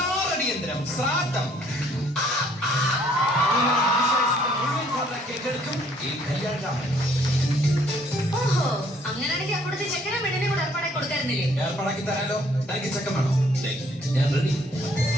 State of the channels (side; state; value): both; normal; correlation 0.63